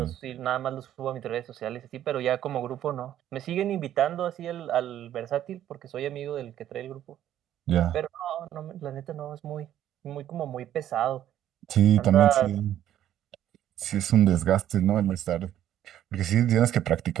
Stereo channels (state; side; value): quieter; left; 11.6 dB